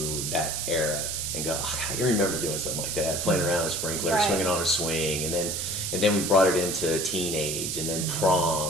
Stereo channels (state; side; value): noise; right; hiss, 2 dB below the sound